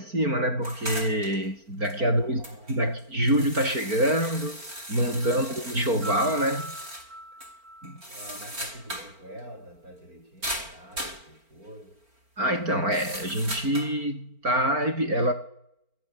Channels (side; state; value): left; late; 4.4 ms